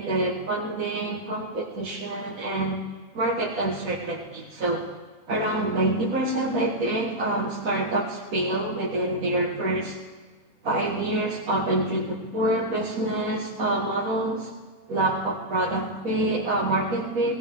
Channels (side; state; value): both; normal; correlation -0.08